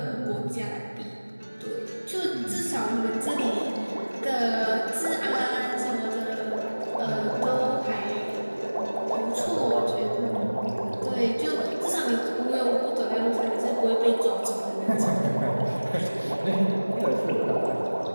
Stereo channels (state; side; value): inverted; both; correlation -1.00